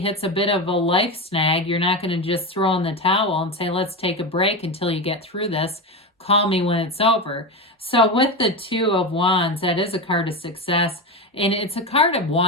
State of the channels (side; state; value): both; normal; correlation 0.18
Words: a bit of a life snag, you're not going to just throw in the towel and say, let's take a break until you get through this. Call me when it's over. So with the Two of Wands, that is a card of success, and it's a card of